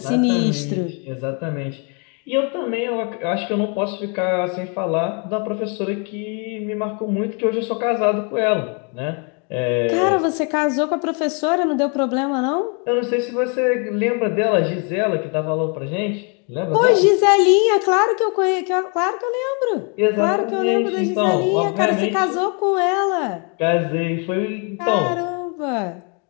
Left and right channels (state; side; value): quieter; right; 36.5 dB